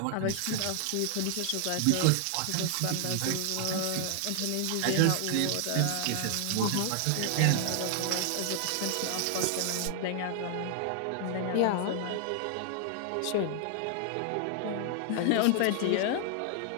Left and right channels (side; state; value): both; different; correlation 0.00